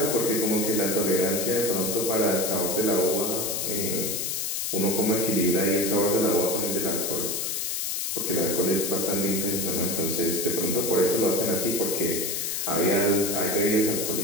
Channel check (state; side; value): noise; left; hiss, 1 dB below the sound